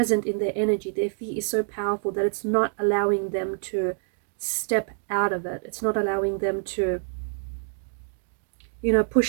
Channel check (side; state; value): left; silent; 61 dB below the other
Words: in their energy. Their fear is so powerful that it's not allowing them to step out of it. It's not allowing them to,